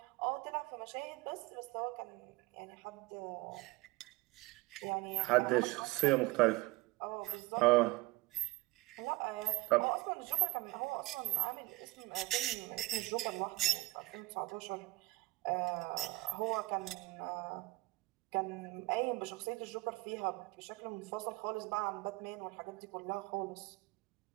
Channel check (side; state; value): left; quieter; 20.6 dB